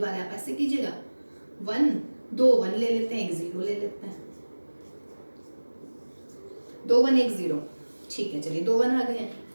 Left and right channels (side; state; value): both; inverted; correlation -1.00